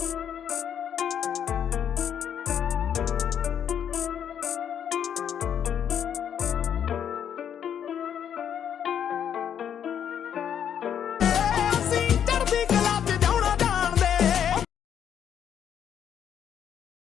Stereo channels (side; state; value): right; quieter; 8.9 dB